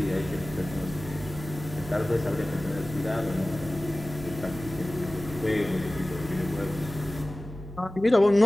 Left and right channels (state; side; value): noise; right; hum, 12 dB below the sound